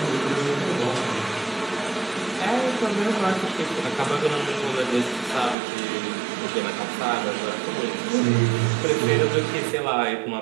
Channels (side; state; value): left; drops out; at 5.6 s